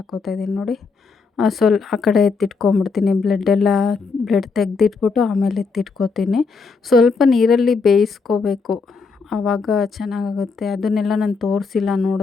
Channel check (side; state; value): right; quieter; 4.7 dB